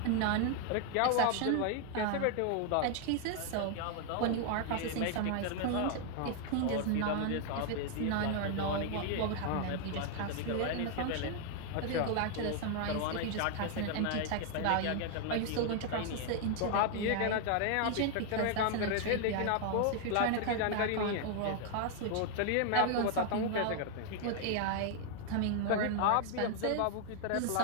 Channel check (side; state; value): both; different; correlation 0.00